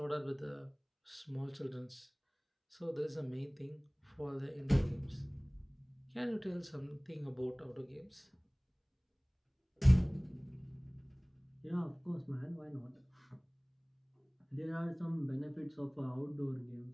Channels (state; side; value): identical; both; correlation 1.00